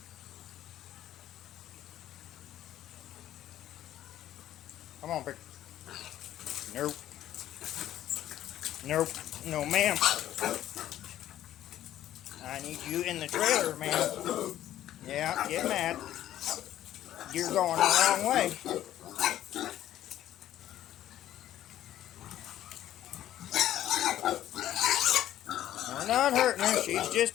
Come on, Pick. Nope. Nope. No, ma'am. I need you in the trailer, ma'am. Yeah, get mad. You're going the wrong way. We're not hurting her. She's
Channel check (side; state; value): right; quieter; 12.5 dB